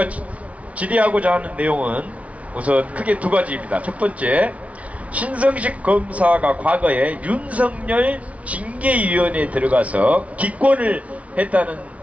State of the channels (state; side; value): late; left; 0.066 ms